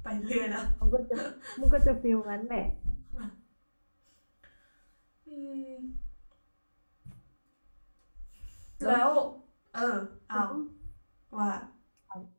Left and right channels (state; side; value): inverted; both; correlation -1.00